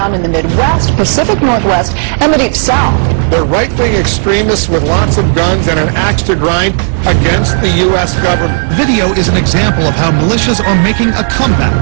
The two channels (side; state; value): left; silent; digital silence